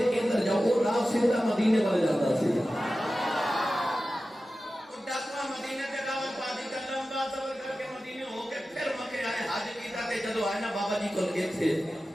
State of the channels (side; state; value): both; normal; correlation 0.94